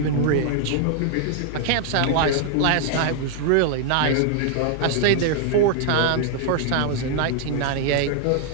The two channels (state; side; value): different; both; correlation 0.00